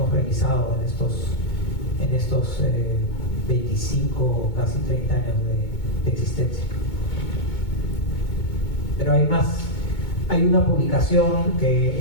realizado en estos 25, casi 30 años de existencia. Pero hay más. Hay una publicación que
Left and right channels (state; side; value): late; right; 2.2 ms